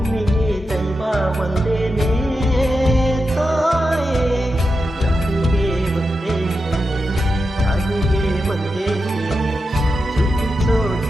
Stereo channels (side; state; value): both; normal; correlation 0.89